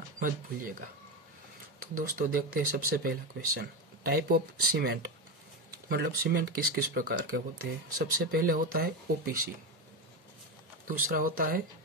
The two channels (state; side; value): normal; both; correlation 0.15